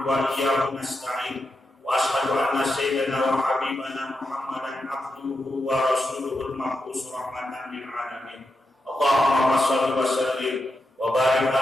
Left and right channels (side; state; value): both; normal; correlation 0.86